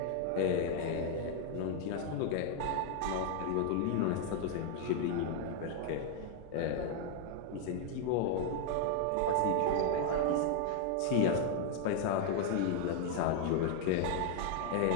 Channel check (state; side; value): different; both; correlation 0.00